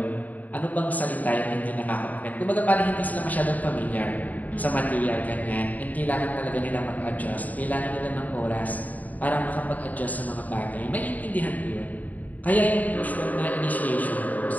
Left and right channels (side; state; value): right; late; 0.077 ms